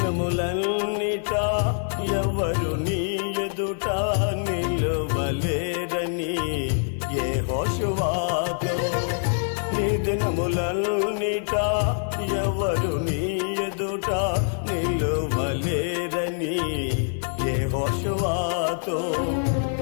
ఎవరు నీ ఎదుట నిలువలేరని యెహోషువతో నీ దినములన్నిట ఎవరు నీ ఎదుట నిలువలేరని యెహోషువతో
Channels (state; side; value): silent; right; 62 dB below the other